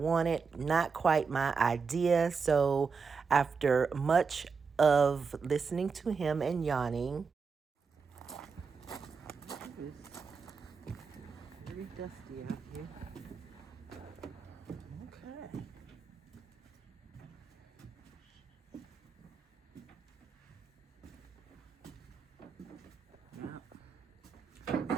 not quite my idea. So after much of listening to him and yawning, It's very dusty out here. Okay. Yeah.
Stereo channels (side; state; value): left; quieter; 5.3 dB